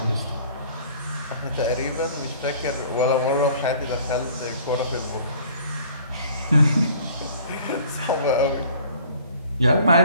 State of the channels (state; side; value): inverted; both; correlation -0.51